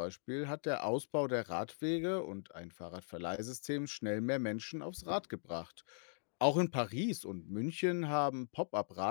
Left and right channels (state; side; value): silent; right; digital silence